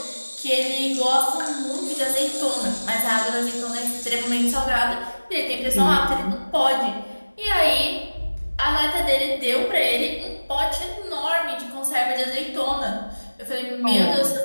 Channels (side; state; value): both; inverted; correlation -1.00